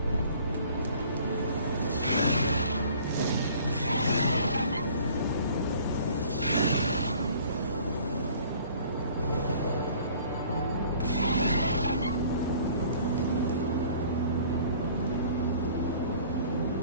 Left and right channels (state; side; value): inverted; both; correlation -0.52